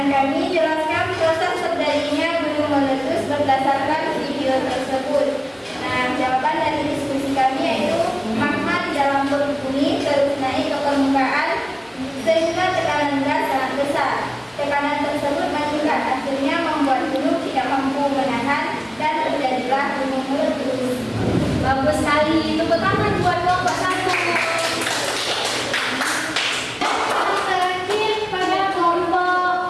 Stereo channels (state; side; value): identical; both; correlation 1.00